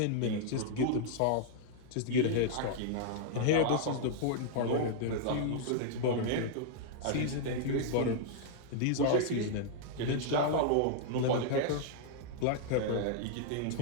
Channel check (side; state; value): both; different; correlation -0.01